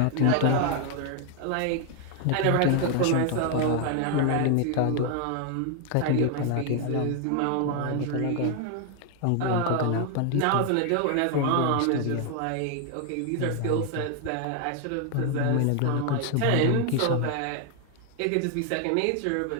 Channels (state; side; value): different; both; correlation 0.00